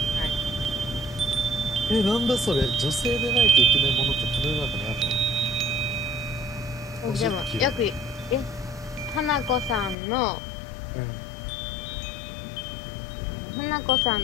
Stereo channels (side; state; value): right; drops out; at 10.0 s